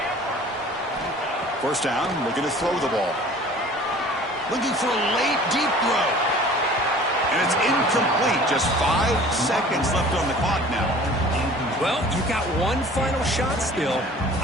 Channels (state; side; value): normal; both; correlation 0.47